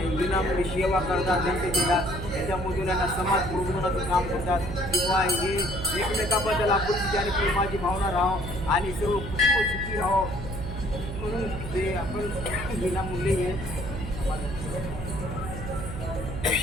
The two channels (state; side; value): noise; right; hum, 7 dB below the sound